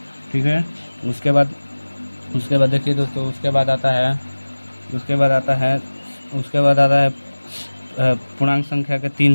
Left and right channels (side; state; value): both; inverted; correlation -1.00